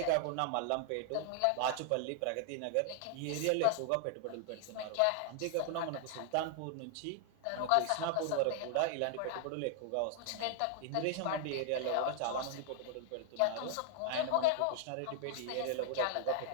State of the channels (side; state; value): both; different; correlation 0.00